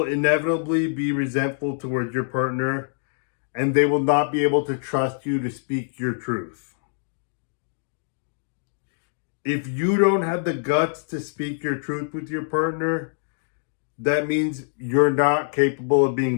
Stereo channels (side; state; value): right; silent; digital silence